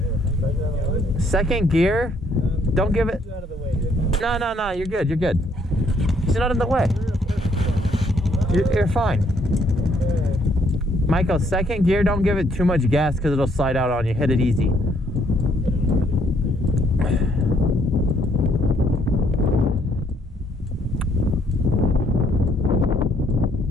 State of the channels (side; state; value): both; normal; correlation 0.68